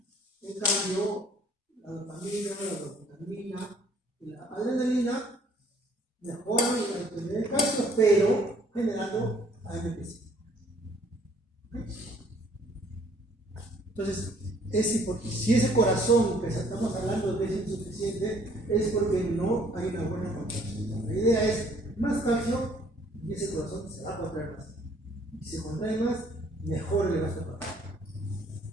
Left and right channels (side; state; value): both; normal; correlation 0.60